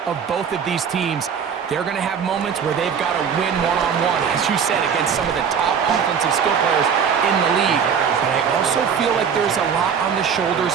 of both of these teams. They're going to have moments where they've got to win one-on-one, as you said, against some of the top offensive skill players in the league. But I also feel like there's a lot on the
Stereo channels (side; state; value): left; quieter; 7.1 dB